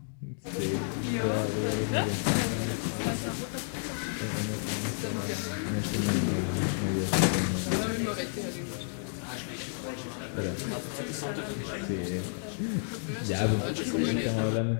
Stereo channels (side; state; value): right; silent; digital silence